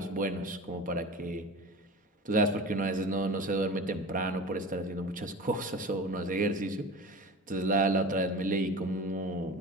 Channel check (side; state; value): both; normal; correlation 0.34